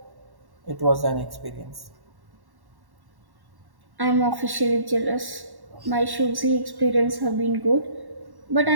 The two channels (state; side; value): late; left; 1.1 ms